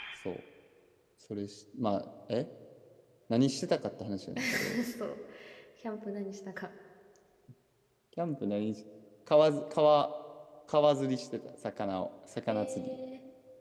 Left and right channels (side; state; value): both; identical; correlation 1.00